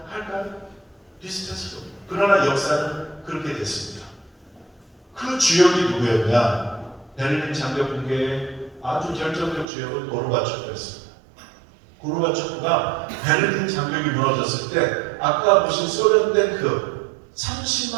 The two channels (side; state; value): left; drops out; at 9.7 s